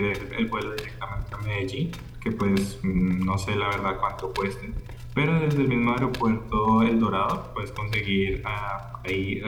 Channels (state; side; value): identical; both; correlation 1.00